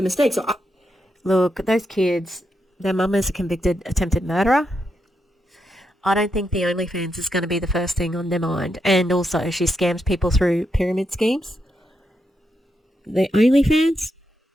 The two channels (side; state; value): both; normal; correlation 0.83